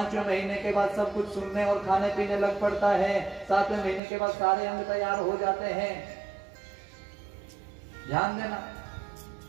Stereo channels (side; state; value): left; drops out; at 4.0 s